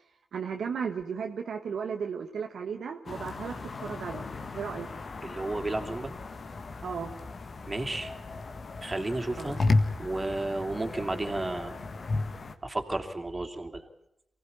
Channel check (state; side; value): normal; both; correlation 0.91